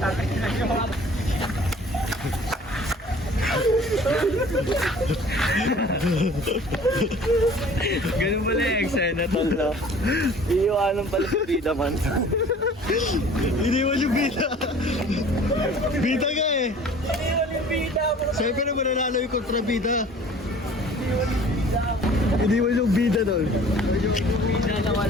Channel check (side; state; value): both; normal; correlation 0.49